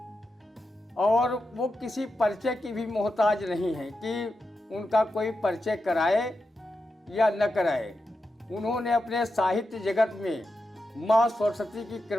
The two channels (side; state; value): both; normal; correlation 0.88